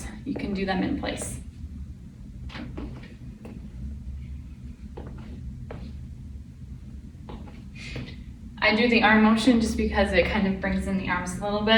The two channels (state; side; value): identical; both; correlation 1.00